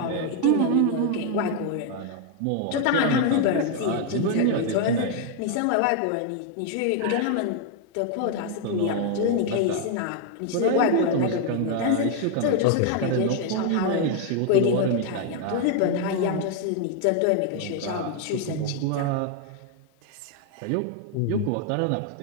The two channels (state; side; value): different; both; correlation 0.00